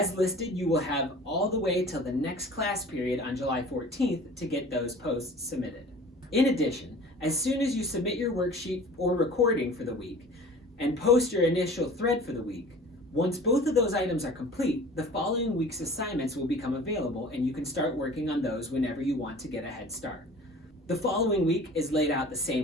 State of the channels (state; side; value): normal; both; correlation 0.44